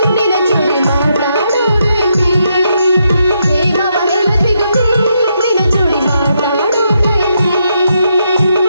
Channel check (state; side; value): inverted; both; correlation -0.79